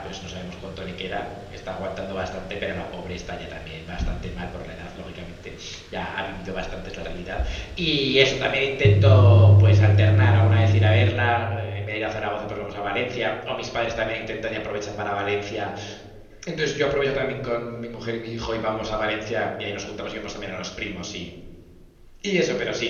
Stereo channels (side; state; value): both; identical; correlation 1.00